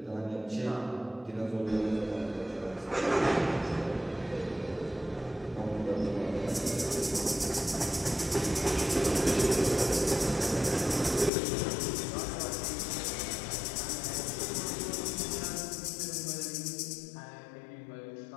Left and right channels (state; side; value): drops out; right; at 11.3 s